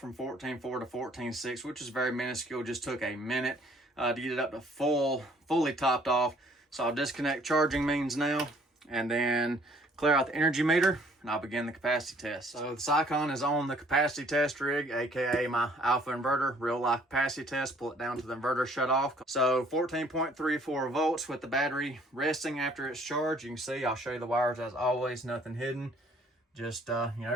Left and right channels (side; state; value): both; normal; correlation 0.60